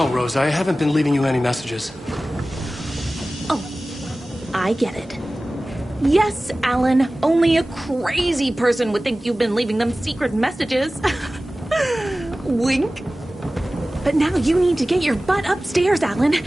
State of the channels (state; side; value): normal; both; correlation 0.97